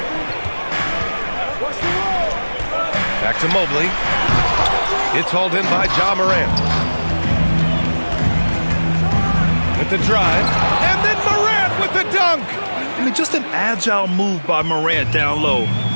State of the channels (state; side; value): inverted; both; correlation -1.00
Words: Back to Mobley. It's hauled in by Ja Morant. With the drive. And then Morant with the dunk. I mean, just an agile move by Morant down low,